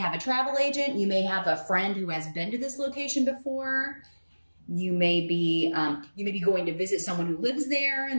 a travel agent. You may have a friend who has been to this location before. You may be going to visit someone who lives there,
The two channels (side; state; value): both; inverted; correlation -1.00